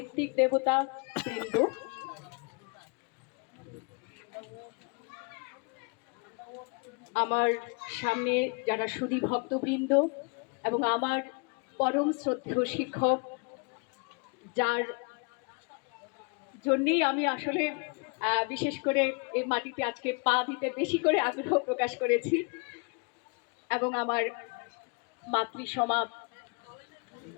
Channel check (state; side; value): quieter; right; 33.0 dB